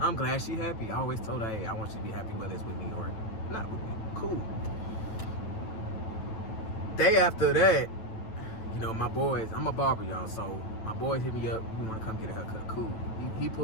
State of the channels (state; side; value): late; right; 9.1 ms